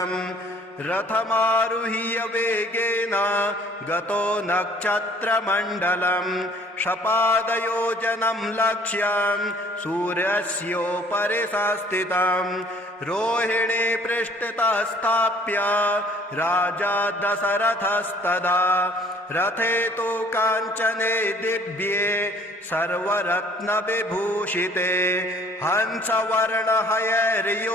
रथमारुह्य वेगेन गतो नक्षत्रमण्डलं शपादयोजनं लक्ष्यं सूर्यस्योपरि संस्थितं रोहिणी पृष्ठतः स्थाप्य राजा दशरथस्तदा रथे तु काञ्चने दिव्ये सर्वरत्नविभूषिते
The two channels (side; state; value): both; normal; correlation 0.56